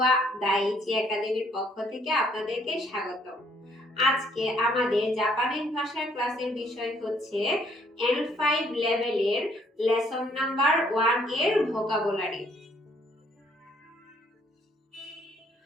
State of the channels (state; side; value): normal; both; correlation 0.66